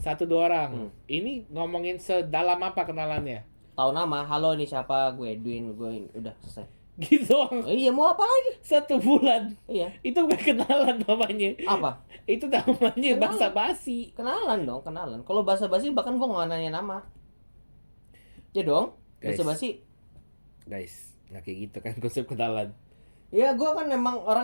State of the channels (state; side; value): inverted; both; correlation -1.00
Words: 1-2 orang. Ini ngomongin sedalam apa kenalannya? Tahu nama, halo nih siapa, gue Edwin, udah selesai. Gitu doang. Iya, mau apa lagi? 1 bulan. Iya. Itu bukan kenalan namanya. Apa? Itu namanya Kenalan. basa-basi. Kenalan dong, kenalan. Kalau basa-basi bahkan gue nggak nanya nama. Ya dong, Guys. basa-basi. Guys, nggak kayak gitu kan konsep kenalan. Ya gue kan memang